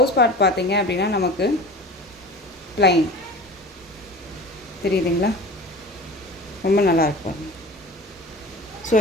பார்ட் பார்த்தீங்க அப்படின்னா நமக்கு ப்ளைன் தெரியுதுங்களா, ரொம்ப நல்லா இருக்கும். ஸோ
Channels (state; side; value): normal; both; correlation 0.37